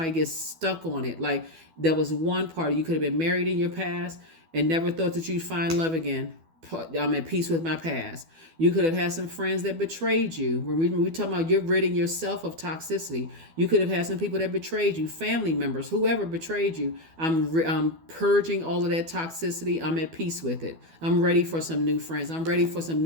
to get stuck on it. Like, that was one part. You could have been married in your past and never thought that you'd find love again. I'm at peace with my past. You could have had some friends that betrayed you. When we talking about you're ridding yourself of toxicity, you could have had some people that betrayed you, family members, whoever betrayed you. I'm purging all of that toxicity. I'm at peace with it. I'm ready for some new friends. I'm ready for some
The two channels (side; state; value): left; late; 12 ms